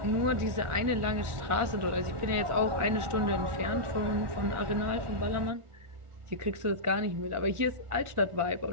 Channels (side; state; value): left; late; 1.4 ms